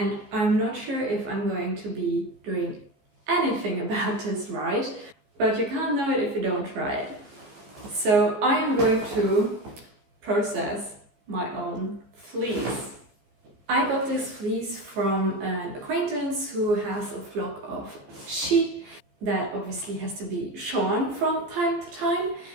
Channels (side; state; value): left; late; 15 ms